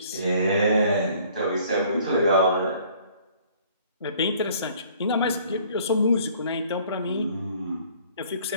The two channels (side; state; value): both; inverted; correlation -0.56